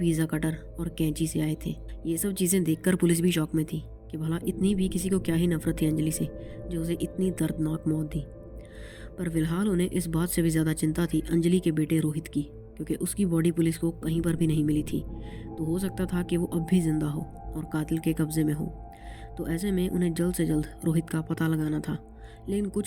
कटर और कैंची से आए थे। ये सब चीज़ें देखकर पुलिस भी शॉक में थी कि भला इतनी भी किसी को क्या ही नफरत थी अंजलि से, जो उसे इतनी दर्दनाक मौत दी। पर फिलहाल उन्हें इस बात से भी ज़्यादा चिंता थी अंजलि के बेटे रोहित की, क्योंकि उसकी बॉडी पुलिस को कहीं पर भी नहीं मिली थी। तो हो सकता था कि वो अब भी जिंदा हो और कातिल के कब्जे में हो। तो ऐसे में उन्हें जल्द से जल्द रोहित का पता लगाना था। लेकिन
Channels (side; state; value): both; identical; correlation 1.00